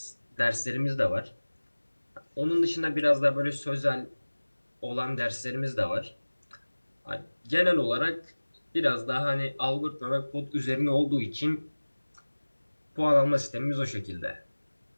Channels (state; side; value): inverted; both; correlation -1.00